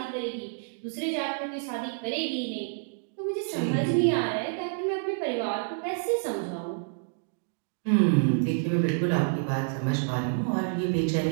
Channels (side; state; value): left; silent; digital silence